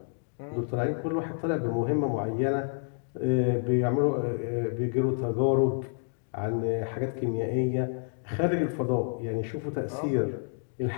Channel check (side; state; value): right; silent; digital silence